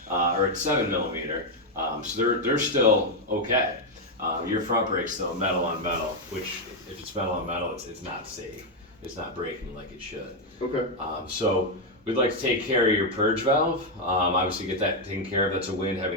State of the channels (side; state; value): both; normal; correlation 0.03